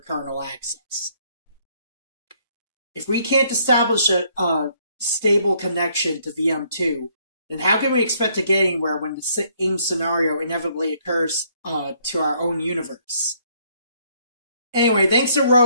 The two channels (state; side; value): inverted; both; correlation -0.67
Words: kernel access. If we can't establish a stable connection to VM2, then how can we expect to get anywhere when the same scenario inevitably occurs to our own universe? Anyway, thanks to